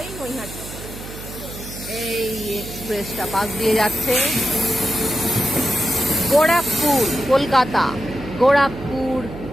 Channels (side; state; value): right; noise; hum, 12 dB below the sound